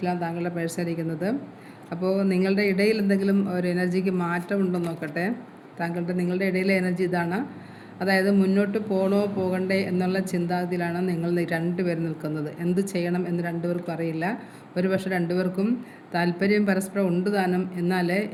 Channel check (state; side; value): identical; both; correlation 1.00